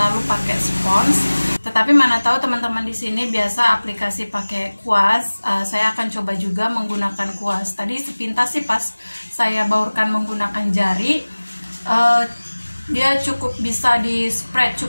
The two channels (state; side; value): inverted; both; correlation -1.00